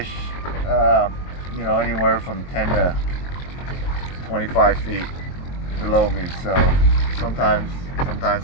you know, anywhere from 10 to 25 feet below me. So sometimes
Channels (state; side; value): late; right; 23 ms